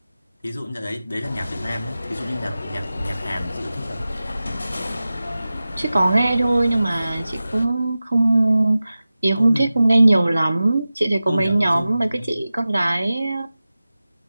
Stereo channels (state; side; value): inverted; both; correlation -0.95